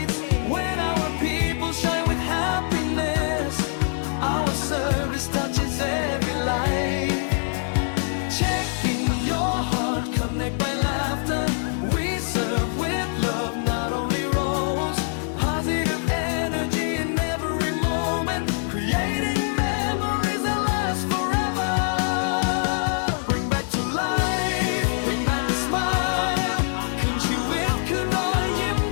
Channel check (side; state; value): right; silent; digital silence